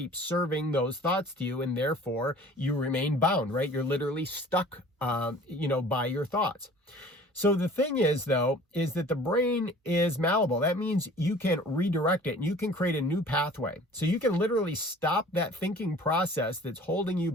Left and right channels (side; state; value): both; normal; correlation 0.47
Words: serving those thoughts to you, and therefore you remain bound, right? You're literally stuck, by your thoughts. So the thing is, though, is that the brain is malleable. That means you can redirect it and you can create a new pathway. So you can literally stop that thinking process that's holding you